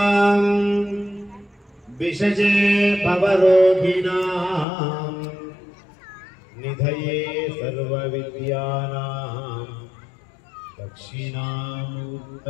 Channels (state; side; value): drops out; right; at 4.7 s